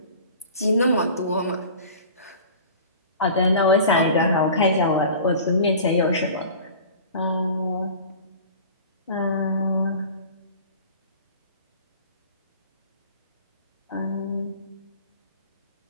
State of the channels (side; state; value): both; inverted; correlation -0.41